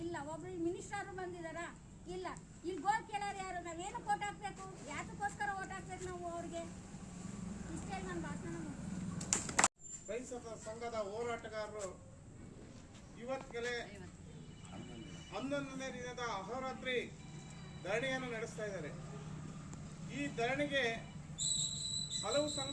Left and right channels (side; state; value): both; identical; correlation 1.00